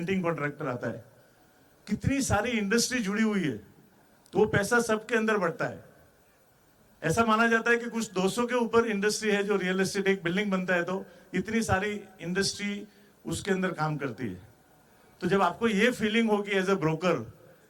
कॉन्ट्रैक्टर आता है। कितनी सारी इंडस्ट्री जुड़ी हुई है, तो वो पैसा सबके अंदर बढ़ता है। ऐसा माना जाता है कि कुछ 200 के ऊपर इंडस्ट्री है जो रियल एस्टेट, एक बिल्डिंग बनता है तो इतनी सारी इंडस्ट्री उसके अंदर काम करती है। तो जब आपको ये फीलिंग होगी एज ए ब्रोकर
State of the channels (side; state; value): both; identical; correlation 1.00